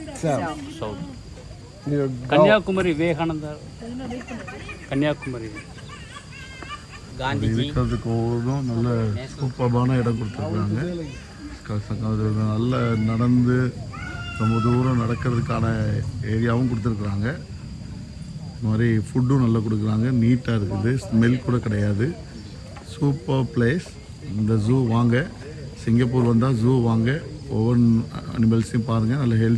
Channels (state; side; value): identical; both; correlation 1.00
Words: கன்னியாகுமரி விவேகானந்தர், கன்னியாகுமரி காந்திஜி இருக்கிறதுக்கு ஒவ்வொன்றும் நல்ல சூப்பர்பான இடம் கொடுத்துருக்குறாங்க. நல்ல நடந்து ரொம்ப தூரம் நடக்கிறதுக்கான ஏரியாவும் கொடுத்துருக்குறாங்க. இந்த மாதிரி ஃபுட்டும் நல்லா கொடுக்குறாங்க. நீட்டாக இருக்குது, ஸ்மெல் கூட கிடையாது. Super place. இந்த ஜூ வாங்க, சிங்கப்பூர் வந்தால் ஜூ வாங்க. ஒவ்வொரு அனிமல்ஸையும் பாருங்கள், நல்ல